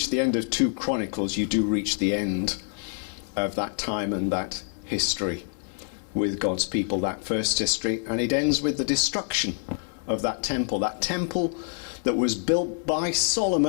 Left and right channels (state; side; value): silent; right; 60 dB below the other